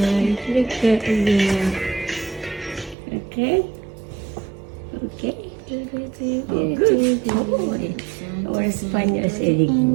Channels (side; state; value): left; drops out; at 3.0 s